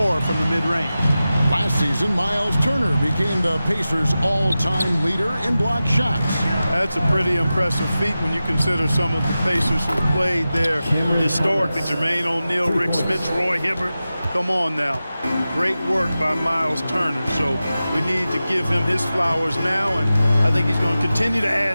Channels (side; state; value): both; inverted; correlation -0.94